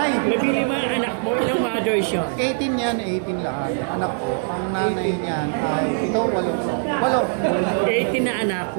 Nabili mo ang anak mo, ilang mothers siya? 18 yan, 18 lahat. Anak ko, ang nanay niyan ay 8. 18 na anak,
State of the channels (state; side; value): silent; left; 62 dB below the other